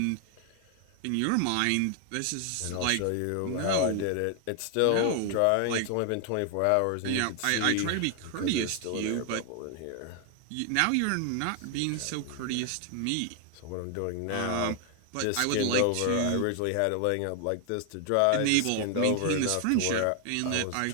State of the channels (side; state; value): both; different; correlation 0.00